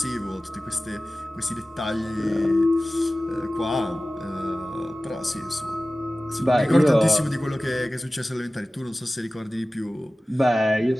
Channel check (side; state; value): both; normal; correlation 0.97